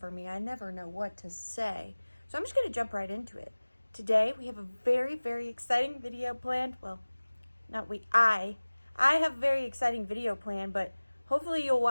me. I never know what to say. So I'm just going to jump right into it. Today we have a very, very exciting video planned. Well, not we, I have a very exciting video planned, but hopefully you'll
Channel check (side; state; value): both; inverted; correlation -1.00